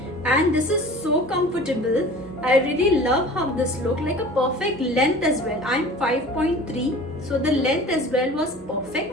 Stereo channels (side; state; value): both; normal; correlation 0.41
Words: and this is so comfortable. I really love how this look, like a perfect length as well. I'm 5.3, so the length as well was